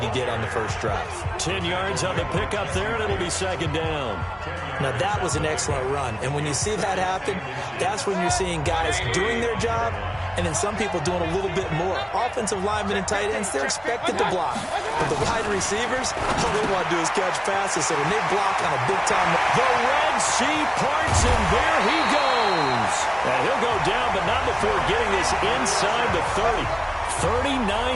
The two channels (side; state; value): both; identical; correlation 1.00